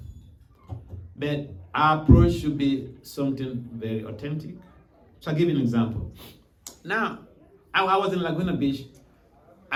but our approach should be something very authentic. So I'll give you an example. Now, I was in Laguna Beach,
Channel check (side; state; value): both; identical; correlation 1.00